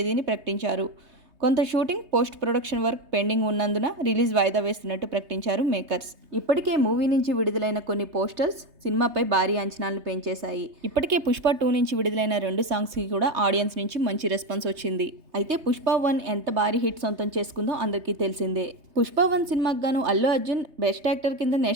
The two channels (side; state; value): left; late; 3.3 ms